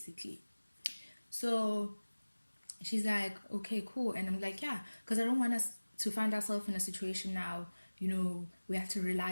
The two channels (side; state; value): both; inverted; correlation -1.00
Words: So she's like, okay, cool. And I'm like, yeah, because I don't want us to find ourselves in a situation now, you know, we have to